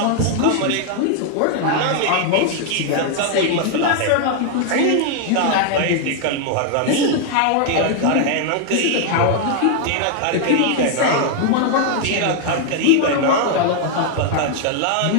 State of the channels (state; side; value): different; both; correlation 0.00